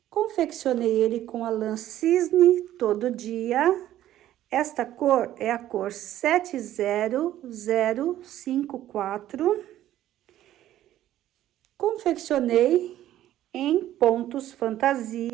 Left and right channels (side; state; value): left; quieter; 13.0 dB